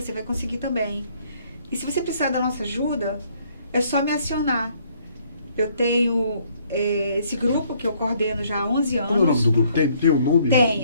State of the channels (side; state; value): both; inverted; correlation -0.65